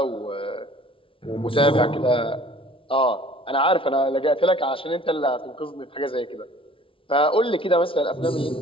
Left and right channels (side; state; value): right; late; 0.25 ms